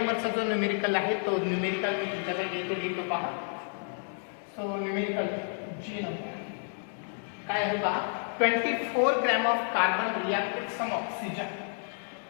जो न्यूमेरिकल आहे तो न्यूमेरिकल मी तुमच्याकडे लिहितो पहा. सो न्यूमेरिकल जे नंबर काय आहे पहा. 24 gram of carbon react with some oxygen.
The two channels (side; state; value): right; silent; 58 dB below the other